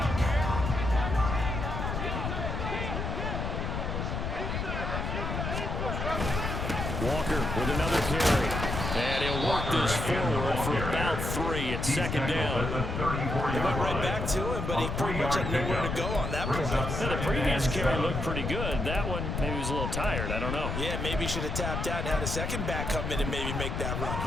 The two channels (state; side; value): noise; left; rumble, 3 dB below the sound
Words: Walker with another carry. And he'll work this forward for about 3. It's second down. They went right back to him, but he pretty much had nowhere to go on that play. The previous carry looked pretty good. That one, maybe he was a little tired. I don't know. Yeah, maybe he should have tapped out and had a second back come in and maybe make that run.